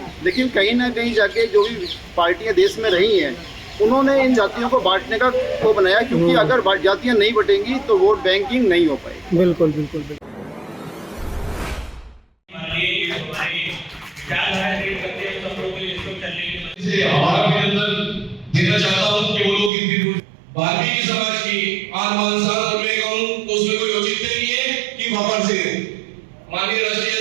लेकिन कहीं ना कहीं जाके जो भी पार्टियां देश में रही हैं उन्होंने इन जातियों को बांटने का वो बनाया, क्योंकि अगर जातियां नहीं बटेंगी तो वोट बैंकिंग नहीं हो पाएगी। बिल्कुल बिल्कुल बिल्कुल। हमारा अभिनंदन देना चाहता हूँ कि वो लोग वाल्मीकि समाज की आन बान मैं कहूँ तो उसमें कोई औचित्य नहीं है कि वापस से माननीय राष्ट्रीय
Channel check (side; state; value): left; drops out; at 19.7 s